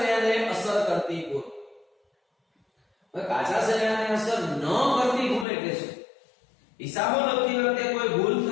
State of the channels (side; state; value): right; drops out; at 5.5 s